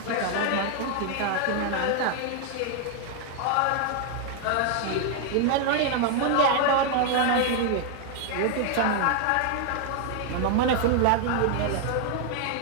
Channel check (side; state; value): both; different; correlation 0.00